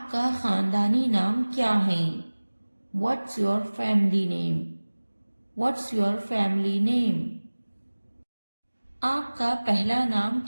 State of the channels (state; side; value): inverted; both; correlation -1.00